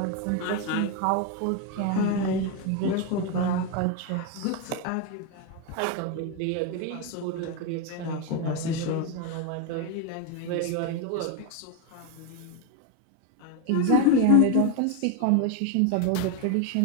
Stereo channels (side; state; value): both; different; correlation 0.02